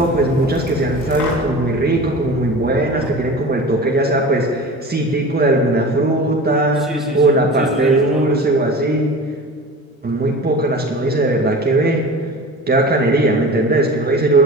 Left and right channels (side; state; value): both; normal; correlation 0.35